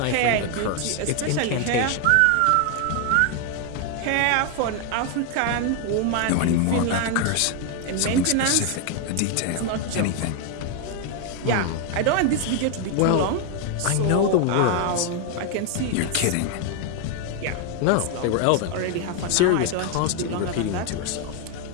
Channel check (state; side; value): different; both; correlation 0.01